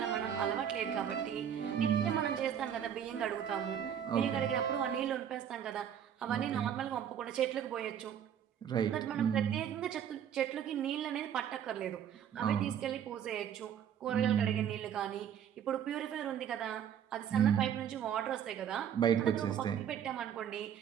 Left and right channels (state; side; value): quieter; left; 9.1 dB